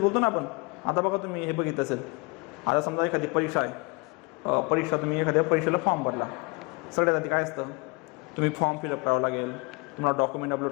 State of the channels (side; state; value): right; quieter; 27.8 dB